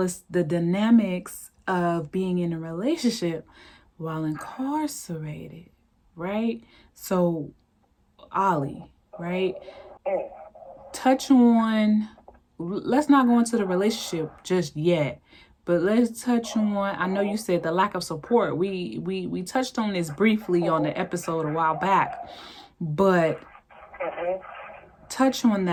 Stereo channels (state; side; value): identical; both; correlation 1.00